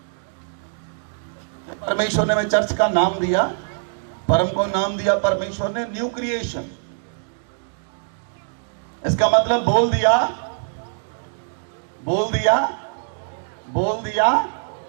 परमेश्वर ने मैं चर्च का नाम दिया, परम को नाम दिया परमेश्वर ने न्यू क्रिएशन। इसका मतलब बोल दिया, बोल दिया, बोल दिया,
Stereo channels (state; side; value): silent; left; digital silence